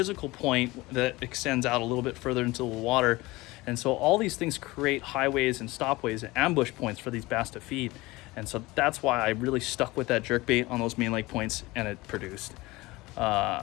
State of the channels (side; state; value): right; quieter; 20.9 dB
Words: point that extends out a little bit further into the water. And so all these things create highways and stopways and ambush points for these bass to feed. And so that's why I really stuck with that jerkbait on those main lake points, and it produced.